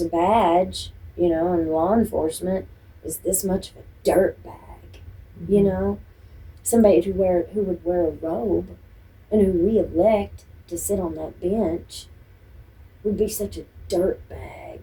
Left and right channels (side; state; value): both; identical; correlation 1.00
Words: a badge, in law enforcement is this much of a dirt bag. Somebody who would wear a robe and who we elect to sit on that bench would be such a dirt